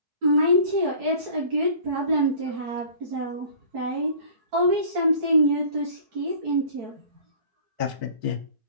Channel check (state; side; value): late; left; 4.6 ms